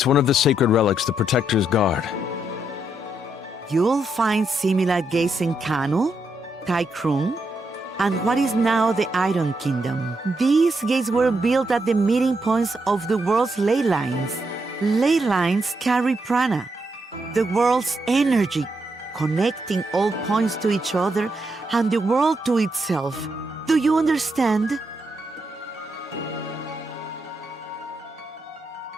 one of the sacred relics the Protectors guard. You'll find similar gates in Kanu, Taikrung, and what is now the Iron Kingdom. These gates were built at the meeting points of the world's ley lines. Ley lines carry prana, the world's energy, connecting all points to each other and the world to itself. Do you understand?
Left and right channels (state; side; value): normal; both; correlation 0.80